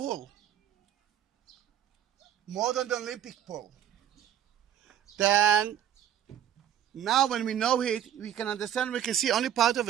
More than the Olympic pool. Then, now when we know it, we can understand, we can see only part of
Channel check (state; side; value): quieter; left; 10.4 dB